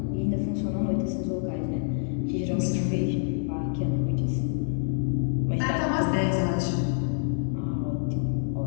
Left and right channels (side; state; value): right; silent; 60 dB below the other